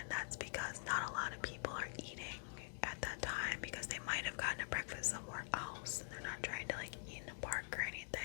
that's because not a lot of people are eating at that time, because they might have gotten a breakfast somewhere else and they're not trying to like eat in a park or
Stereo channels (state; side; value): silent; right; digital silence